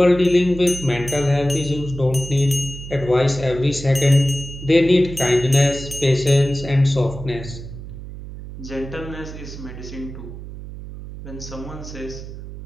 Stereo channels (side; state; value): right; noise; hum, 12 dB below the sound